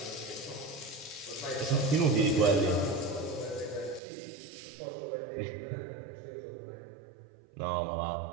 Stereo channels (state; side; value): drops out; left; at 4.0 s